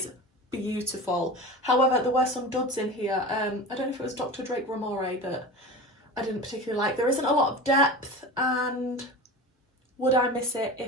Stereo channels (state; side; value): normal; both; correlation 0.31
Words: beautiful. However, there were some duds in here. I don't know if it was Dr. Drake Ramore that I didn't particularly like. There isn't a lot of depth, and would I miss it